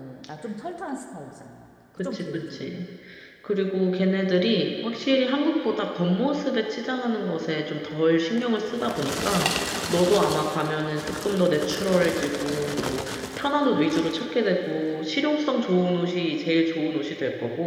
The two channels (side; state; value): both; identical; correlation 1.00